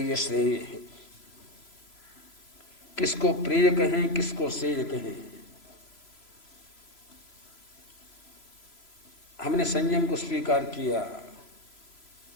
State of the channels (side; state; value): right; late; 3.0 ms